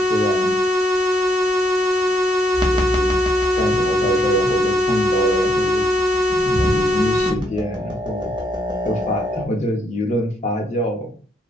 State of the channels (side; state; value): both; normal; correlation 0.73